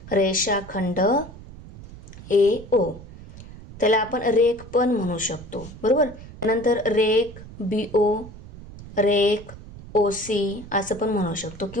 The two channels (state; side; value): noise; right; rumble, 16 dB below the sound